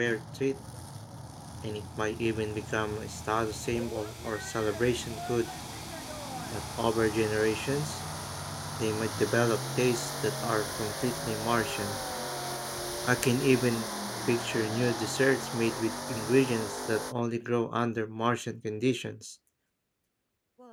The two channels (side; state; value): both; identical; correlation 1.00